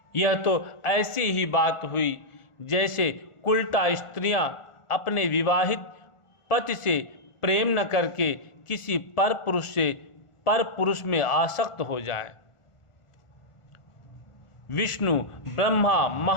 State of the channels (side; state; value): right; late; 1.4 ms